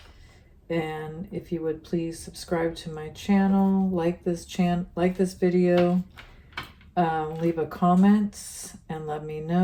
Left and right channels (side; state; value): both; identical; correlation 1.00